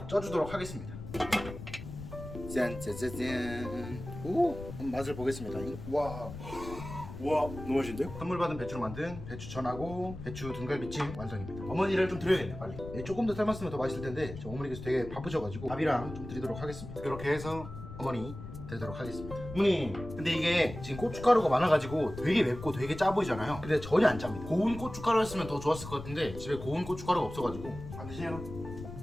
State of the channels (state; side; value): noise; left; rumble, 11 dB below the sound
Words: 쪄주도록 하겠습니다. 짠짜짜짠. 오, 한번 맛을 보겠습니다. 와, 너무 맛있는데요? 선물 받은 배추로 만든 배추전하고 배추 등갈비찜 완성입니다. 어머니를 좀 드려야겠네, 빨리. 조금 더 삶았으면 더 맛있을 텐데 어머니께서 되게 바쁘셔가지고 밥이랑 좀 드리도록 하겠습니다. 이렇게 해서 어머니 드리도록 하겠습니다. 어머니, 근데 이게 지금 고춧가루가 많아가지고 되게 맵고 되게 짜 보이잖아요. 근데 전혀 안 짭니다. 고운 고춧가루였으면 더 좋았을 것 같은데 집에 고운 고춧가루가 없어가지고 안 드시네요.